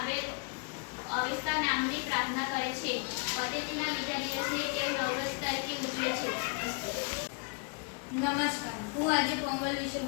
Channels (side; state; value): right; quieter; 37.2 dB